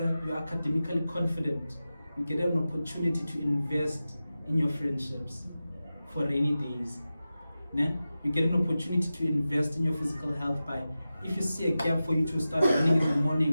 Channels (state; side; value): inverted; both; correlation -0.94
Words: you're academically confident, you get an opportunity to invest in your friendships for rainy days. Ne? You get an opportunity to invest in your physical health by, if you see a gap for you to start running in the morning